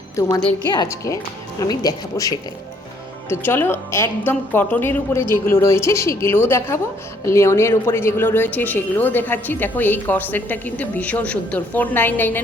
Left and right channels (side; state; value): both; normal; correlation 0.65